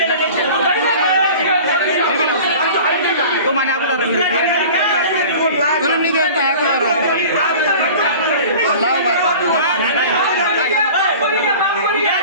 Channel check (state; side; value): inverted; both; correlation -0.40